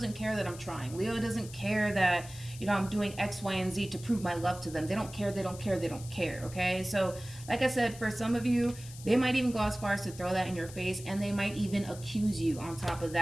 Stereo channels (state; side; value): noise; left; hiss, 16 dB below the sound